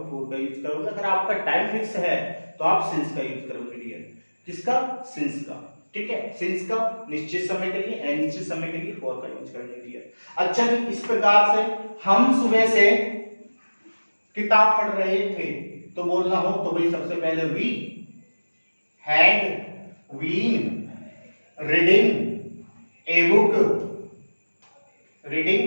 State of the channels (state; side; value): inverted; both; correlation -1.00